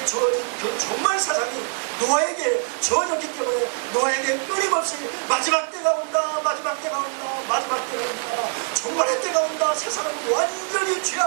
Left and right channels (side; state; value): left; silent; 60 dB below the other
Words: 주어진 그 종말 사상이 노아에게 주어졌기 때문에 노아에게 끊임없이 마지막 때가 온다 마지막 때가 온다 마지막 때가 온다 종말의 때가 온다 세상은 완전히